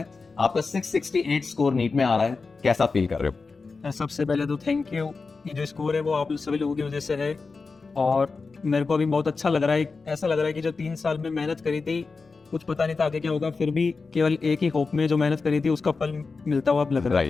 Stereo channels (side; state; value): right; quieter; 4.3 dB